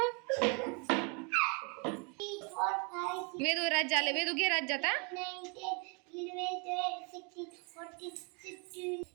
वेदू राज्य आले. वेदू घे राज्य आता.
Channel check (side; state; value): left; quieter; 33.4 dB